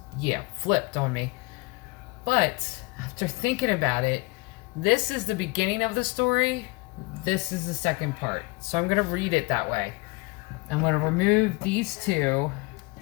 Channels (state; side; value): quieter; right; 25.4 dB